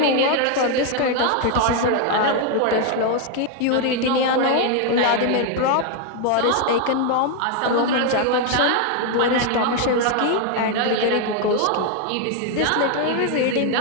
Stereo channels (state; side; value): different; both; correlation 0.01